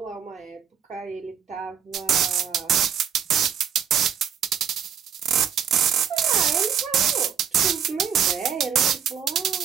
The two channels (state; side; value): quieter; left; 8.2 dB